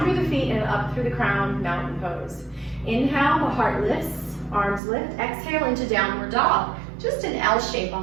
through the feet and up through the crown, mountain pose. Inhale, the heart lifts, arms lift. Exhale into downward dog, just an L shape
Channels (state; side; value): drops out; left; at 4.8 s